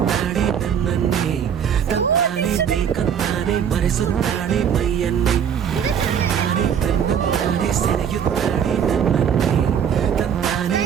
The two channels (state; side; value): quieter; left; 8.2 dB